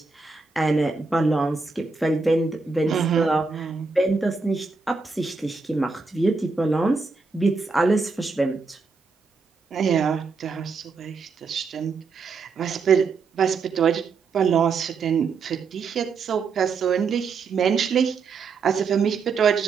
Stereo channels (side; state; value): left; quieter; 4.6 dB